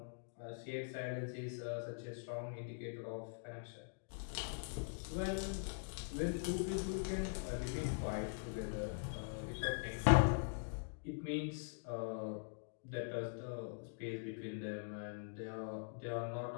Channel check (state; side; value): silent; right; digital silence